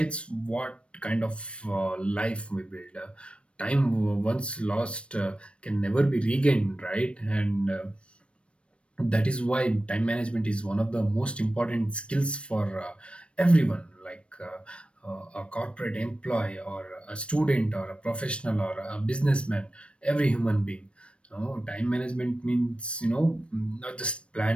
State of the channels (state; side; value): late; right; 0.060 ms